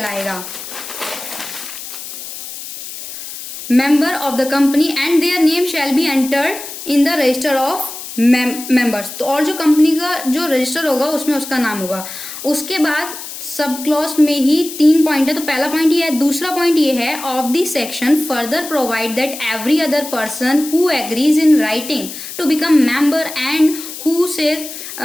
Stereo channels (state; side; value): noise; left; hiss, 11 dB below the sound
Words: Member of the company and their name shall be entered in the register of members. तो और जो कंपनी का जो रजिस्टर होगा उसमें उसका नाम होगा। उसके बाद सब क्लॉज में ही 3 पॉइंट है। तो पहला पॉइंट ये है। दूसरा पॉइंट ये है, of the section further provide that every other person who agrees in writing to become member and who says